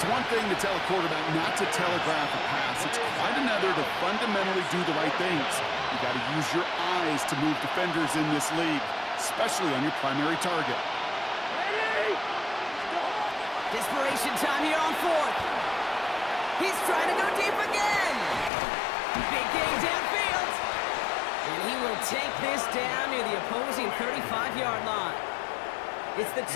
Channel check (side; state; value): right; drops out; at 18.5 s